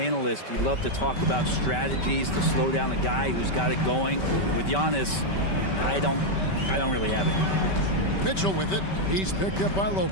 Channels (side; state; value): right; late; 5.2 ms